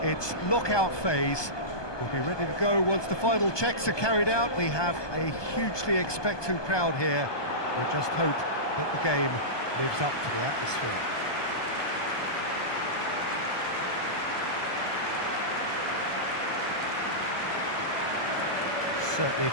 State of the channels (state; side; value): late; right; 1.2 ms